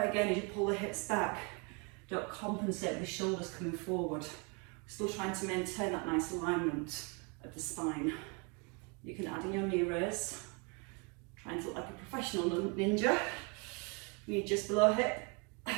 again, as you pull the hips back, don't compensate with the shoulders coming forward. We're still trying to maintain that nice alignment of the spine. You can add in your knee raise. Trying to look like a professional ninja. Knee just below hip.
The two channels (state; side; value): quieter; left; 33.0 dB